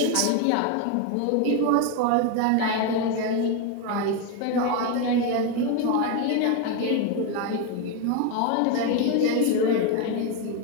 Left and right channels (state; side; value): different; both; correlation 0.02